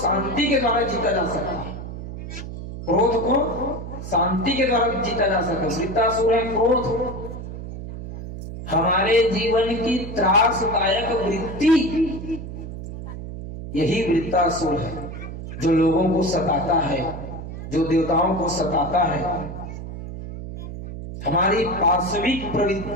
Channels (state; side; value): noise; right; hum, 9 dB below the sound